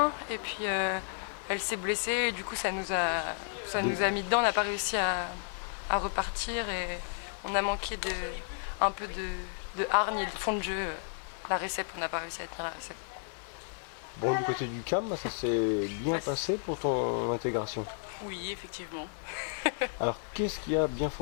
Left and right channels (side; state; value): right; silent; 56 dB below the other